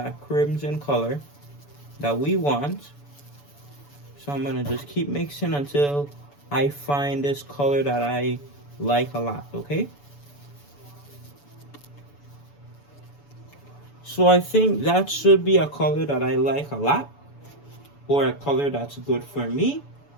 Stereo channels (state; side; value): late; right; 7.0 ms